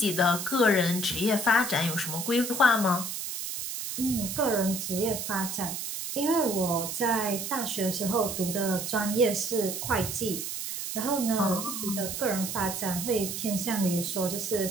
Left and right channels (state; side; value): noise; right; hiss, 5 dB below the sound